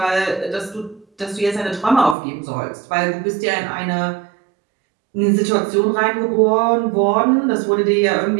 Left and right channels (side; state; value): left; drops out; at 2.1 s